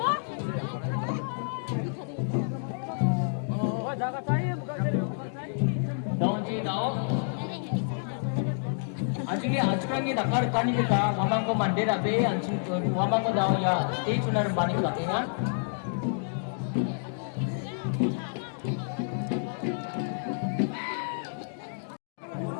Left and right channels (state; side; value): silent; right; digital silence